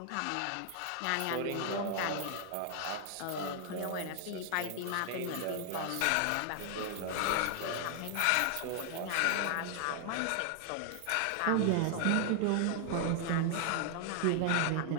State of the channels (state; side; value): different; both; correlation 0.00